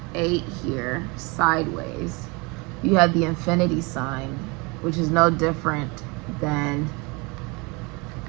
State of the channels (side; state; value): left; quieter; 28.0 dB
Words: 8 here sideways, you have the infinity sign, which is no different than